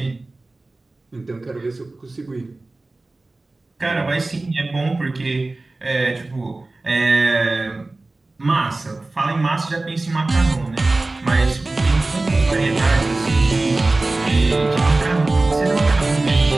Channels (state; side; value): quieter; left; 3.1 dB